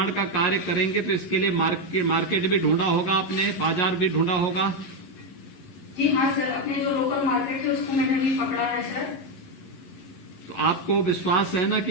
का कार्य करेंगे, तो इसके लिए मार्केट भी ढूंढा होगा आपने, बाजार भी ढूंढा होगा? जी हाँ सर, अपने जो लोकल मार्केट है उसको मैंने अभी पकड़ा है सर। तो आपको विश्वास है ना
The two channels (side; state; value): right; late; 11 ms